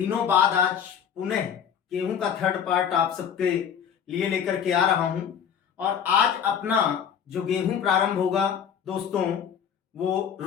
बाद आज पुनः गेहूं का थर्ड पार्ट आप सबके लिए लेकर के आ रहा हूं। और आज अपना जो गेहूं प्रारंभ होगा दोस्तों वो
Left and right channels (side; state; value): right; quieter; 8.0 dB